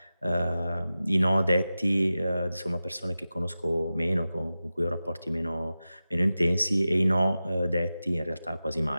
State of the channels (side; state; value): both; inverted; correlation -0.94